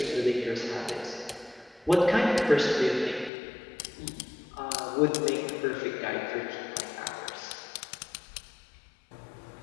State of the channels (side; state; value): right; drops out; at 3.3 s